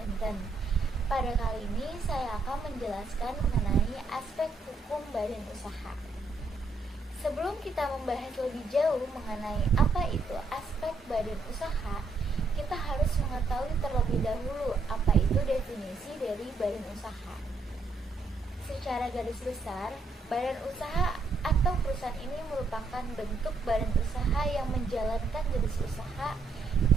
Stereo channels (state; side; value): quieter; left; 3.5 dB